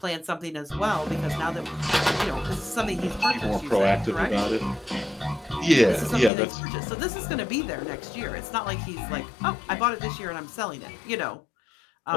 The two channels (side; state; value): right; drops out; at 6.3 s